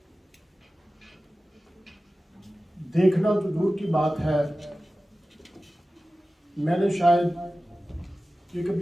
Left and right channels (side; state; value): both; normal; correlation 0.95